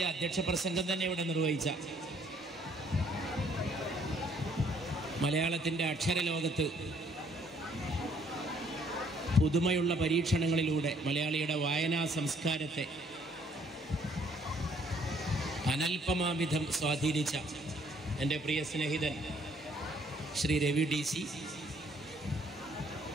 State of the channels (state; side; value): normal; both; correlation 0.63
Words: അധ്യക്ഷ പ്രസംഗം തന്നെ ഇവിടെ നിർവഹിച്ച മലയാളത്തിൻ്റെ അക്ഷരലോകത്ത് പുതുമയുള്ള പരീക്ഷണങ്ങളിലൂടെ മലയാളിയുടെ വായനാ സംസ്കാരത്തെ അനൽപമാവിധം സ്വാധീനിച്ച എൻ്റെ പ്രിയ സ്നേഹിതൻ ശ്രീ രവി DC